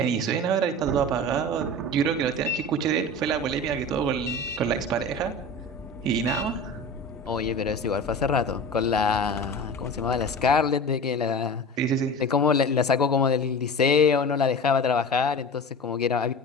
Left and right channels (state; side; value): normal; both; correlation 0.33